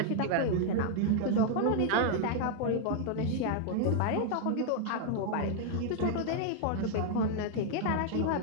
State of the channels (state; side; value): different; both; correlation -0.01